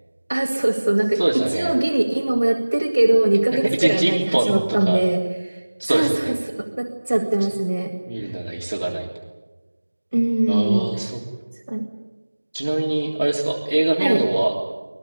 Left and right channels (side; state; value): both; inverted; correlation -1.00